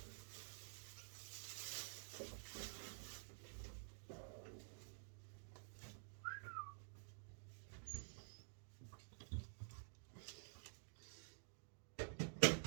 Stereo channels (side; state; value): left; silent; digital silence